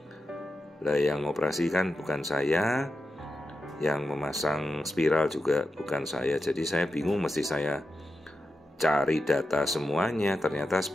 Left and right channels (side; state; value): both; normal; correlation 0.90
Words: Lah yang operasi kan bukan saya, yang memasang spiral juga bukan saya. Jadi saya bingung, mesti saya cari data semuanya. Ternyata